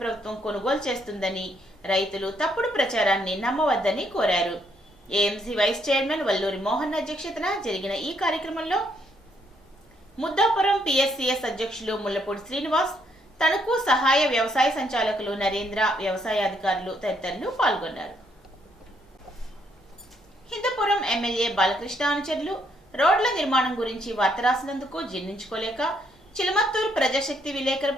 ప్రభుత్వం కొనుగోలు చేస్తుందని, రైతులు తప్పుడు ప్రచారాన్ని నమ్మవద్దని కోరారు. AMC vice chairman Valluri Mohan అధ్యక్షతన జరిగిన ఈ కార్యక్రమంలో ముద్దాపురం పిఎస్సిఎస్ అధ్యక్షులు ముల్లపూడి శ్రీనివాస్, తణుకు సహాయ వ్యవసాయ సంచాలకులు నరేంద్ర, వ్యవసాయ అధికారులు తదితరులు పాల్గొన్నారు. హిందూపురం ఎమ్మెల్యే బాలకృష్ణ అనుచరులు రోడ్ల నిర్మాణం గురించి వార్త రాసినందుకు జీర్ణించుకోలేక చిలమత్తూరు ప్రజాశక్తి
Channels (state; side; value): normal; both; correlation 0.72